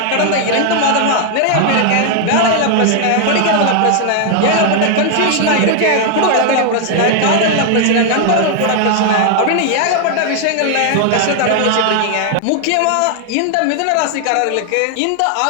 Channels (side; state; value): both; different; correlation 0.00